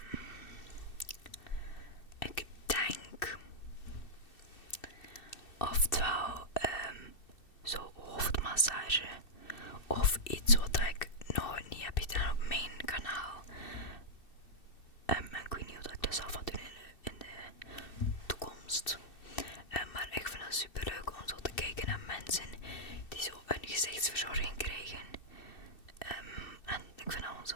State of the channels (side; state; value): right; late; 2.7 ms